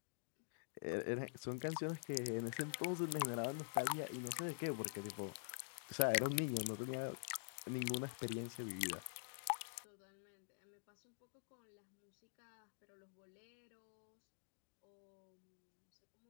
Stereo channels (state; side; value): silent; right; digital silence